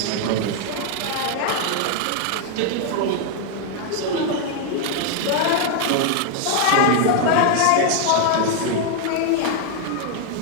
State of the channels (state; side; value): different; both; correlation 0.00